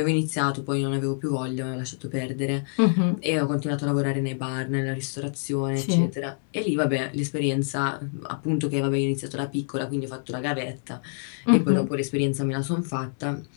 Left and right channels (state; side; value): silent; right; 61 dB below the other